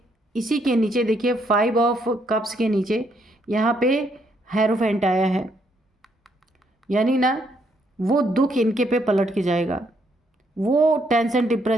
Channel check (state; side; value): normal; both; correlation 0.73